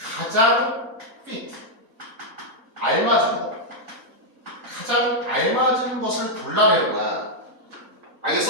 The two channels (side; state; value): both; normal; correlation -0.03